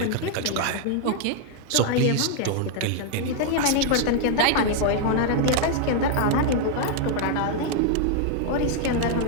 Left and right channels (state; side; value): different; both; correlation 0.00